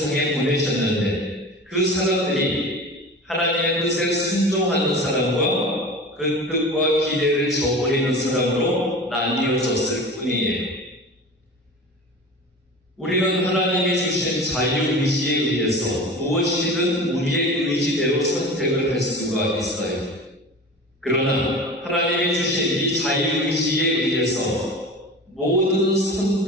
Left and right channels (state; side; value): normal; both; correlation 0.34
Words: 보내셨는데 그 사람들이 하나님의 뜻에 순종하는 사람과 그 뜻과 기대를 저버리는 사람으로 나뉘어졌을 뿐이에요. 우리는 하나님이 주신 자유의지에 의해서 무엇이든 우리의 의지대로 선택을 할 수가 있어요. 그러나 하나님이 주신 이 자유의지에 의해서 모든